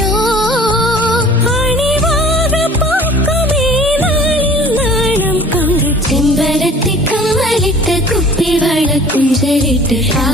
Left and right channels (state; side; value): normal; both; correlation 0.47